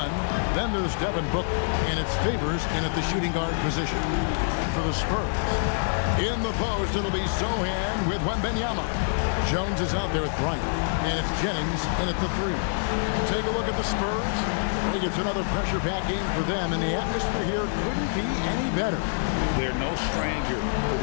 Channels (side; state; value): right; silent; digital silence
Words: Then there's Devin Booker. And it's Favors in at the shooting guard position. And for the Spurs, in the post, it'll be Sohan with Wembanyama. Jones is out there with Bryant. And it's Jennings in at the three. Take a look at the Spurs. I think it's another pressure-packed game for them, and the atmosphere here couldn't be any better. They're no stranger to